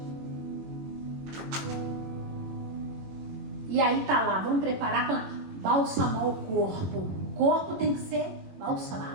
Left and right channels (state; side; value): late; left; 21 ms